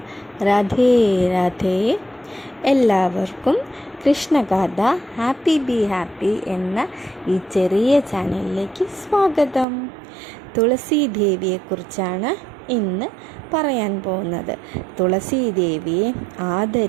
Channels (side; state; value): left; drops out; at 9.7 s